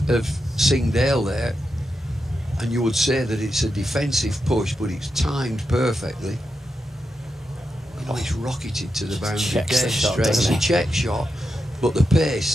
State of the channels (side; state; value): both; normal; correlation 0.87